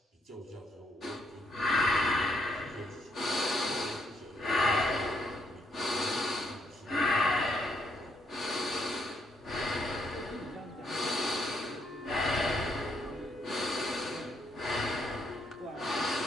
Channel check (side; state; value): both; normal; correlation 0.73